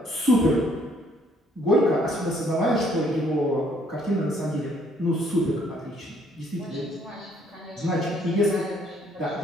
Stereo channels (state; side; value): normal; both; correlation 0.65